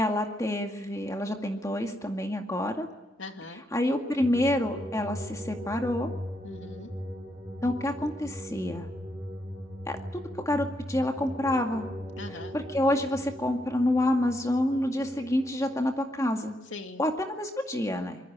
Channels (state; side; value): normal; both; correlation 0.78